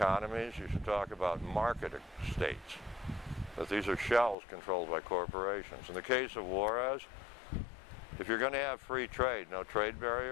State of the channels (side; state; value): right; drops out; at 4.4 s